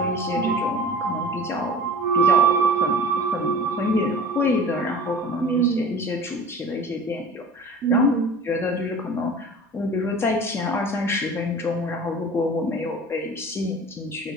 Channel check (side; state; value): both; normal; correlation 0.40